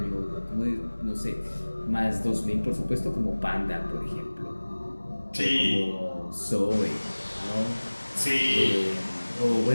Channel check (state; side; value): inverted; both; correlation -1.00